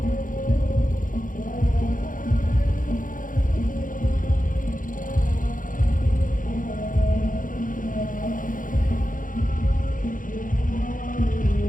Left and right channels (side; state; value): right; late; 0.39 ms